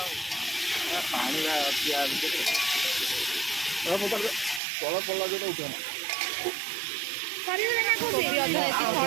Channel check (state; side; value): drops out; left; at 4.6 s